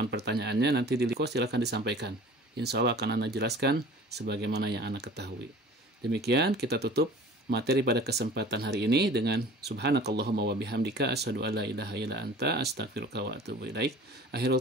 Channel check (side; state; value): both; normal; correlation 0.44